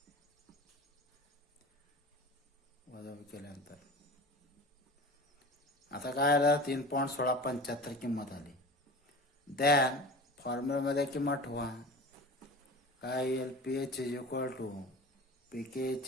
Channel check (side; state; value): both; normal; correlation 0.35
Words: वजाबाकी केल्यानंतर. आता काय आलं? 3.1675 किंमत आली. दॅन फॉर्म्युलामध्ये किंमत ठेवा. काय येईल? PH is equal to pK